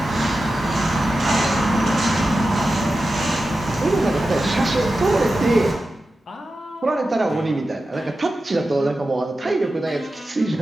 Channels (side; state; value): both; normal; correlation 0.92